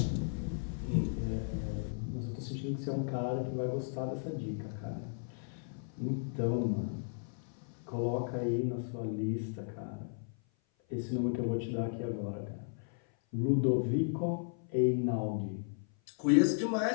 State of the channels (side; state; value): right; silent; 54 dB below the other